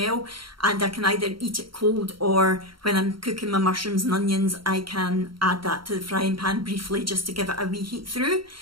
and I can either eat it cold, or when I'm cooking my mushrooms and onions, I can add that to the frying pan briefly just to give it a wee heat through.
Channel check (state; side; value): late; left; 0.73 ms